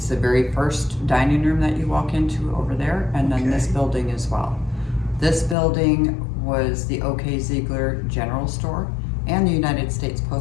the very first dining room that you walk into over there, and then this building as well. This building was the O.K. Ziegler General Store and the United States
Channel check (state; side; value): drops out; right; at 5.6 s